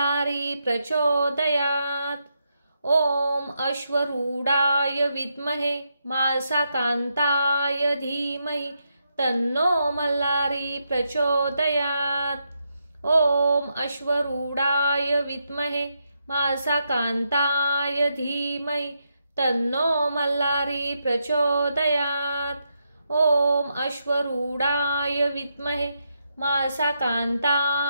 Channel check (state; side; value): inverted; both; correlation -0.82